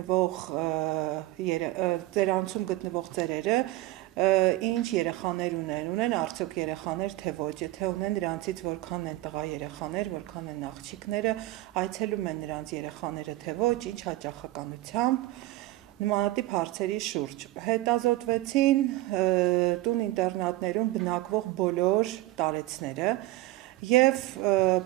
գտնվող ծերերը ինչ երեխաներ ունեն արդյոք երեխաներ թե ոչ, եթե ունեն նրանցից որքան են տղա երեխաներ, որքան են աղջիկները, այցելում են նրանց երեխաները թե ոչ, ինչ հաճախականությամբ, նմանատիպ հարցերի շուրջ։ Հետազոտվեցին տուն ինտերնատներում բնակվող բոլոր տարեցները և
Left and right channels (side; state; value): left; quieter; 17.3 dB